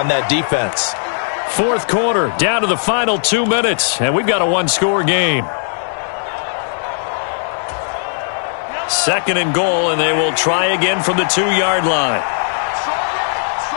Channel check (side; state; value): right; silent; digital silence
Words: that defense. 4th quarter, down to the final 2 minutes, and we've got a 1-score game. 2nd and goal, and they will try again from the 2-yard line.